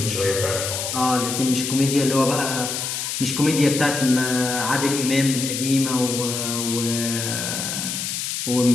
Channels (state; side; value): noise; left; hiss, 3 dB below the sound